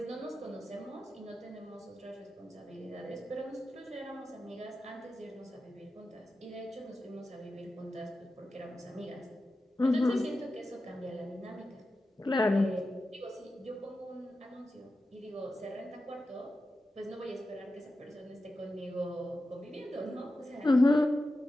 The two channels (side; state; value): both; normal; correlation 0.91